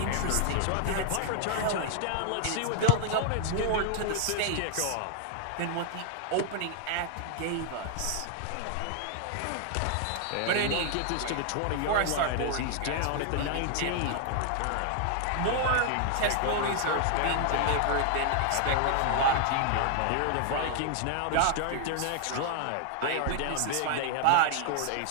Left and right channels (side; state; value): both; different; correlation 0.00